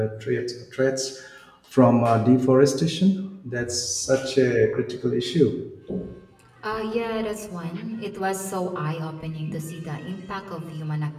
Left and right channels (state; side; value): identical; both; correlation 1.00